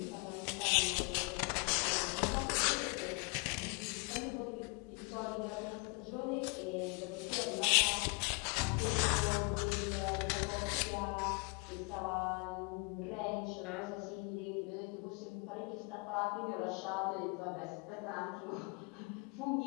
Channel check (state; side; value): quieter; right; 31.6 dB